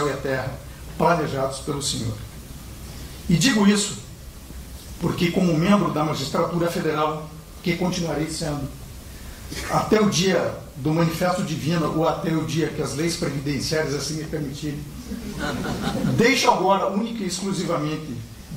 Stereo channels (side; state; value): both; identical; correlation 1.00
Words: e a terra, planejados pelo Senhor. E digo isso porque, como membro da magistratura federal, que continuarei sendo, até o dia do manifesto divino ou até o dia que as leis previdenciárias assim me permitirem, deixo agora, única e exclusivamente,